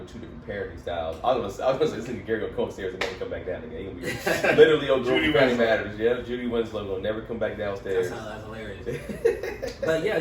two different parenting styles. I was gonna say this nigga Gary gonna come upstairs and never come back down again. He gonna be literally on Judy Family Matters. Yeah, Judy Winslow gonna never come back downstairs. That's hilarious. But yeah,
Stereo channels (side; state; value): both; identical; correlation 1.00